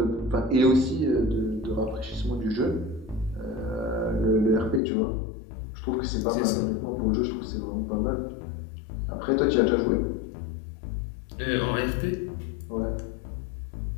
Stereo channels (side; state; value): right; drops out; at 4.8 s